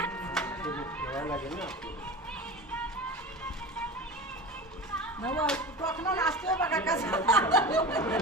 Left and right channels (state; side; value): normal; both; correlation 0.31